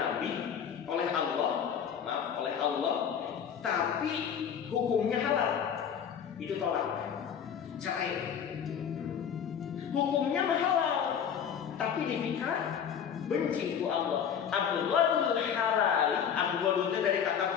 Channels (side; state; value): right; quieter; 8.0 dB